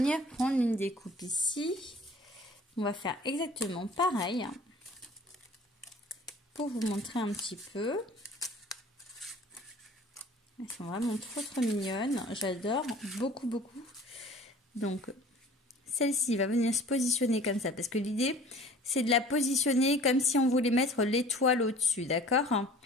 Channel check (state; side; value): normal; both; correlation 0.47